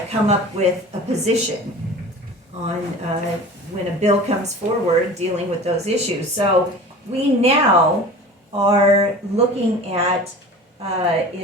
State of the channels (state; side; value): normal; both; correlation 0.38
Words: come up with a position on when a bill comes forward dealing with those issues. So we now are looking at